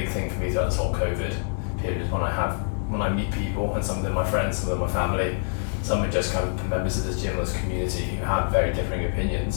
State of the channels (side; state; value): right; silent; digital silence